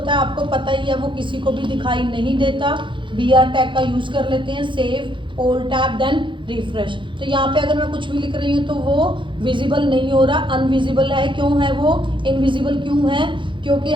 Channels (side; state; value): left; late; 0.24 ms